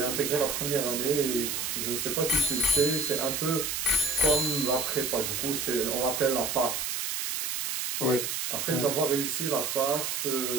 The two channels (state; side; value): noise; right; hiss, 2 dB below the sound